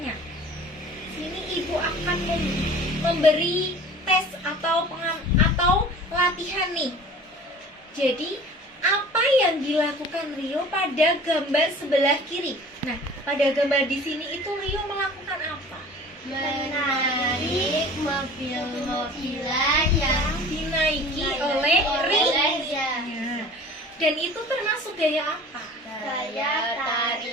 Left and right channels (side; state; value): both; normal; correlation 0.43